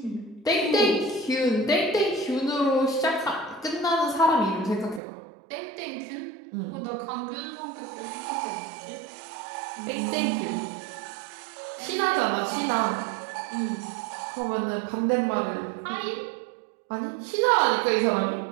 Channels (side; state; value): left; drops out; at 5.0 s